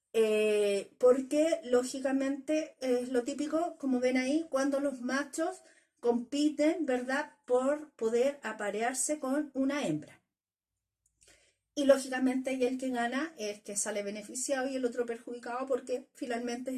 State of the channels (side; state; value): both; identical; correlation 1.00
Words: Porque lógicamente es lo típico, como ven ahí, cuando los machos compiten, ¿verdad? Por poder aparearse con una hembra. Y lógicamente y el que gana es el que sale beneficiado y el otro perjudicado porque finalmente